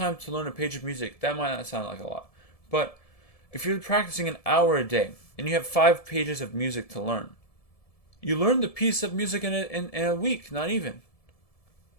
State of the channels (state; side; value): late; right; 1.7 ms